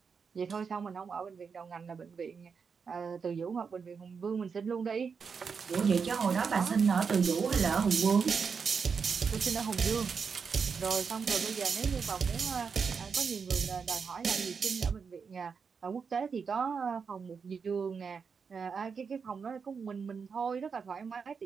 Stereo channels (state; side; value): quieter; left; 5.8 dB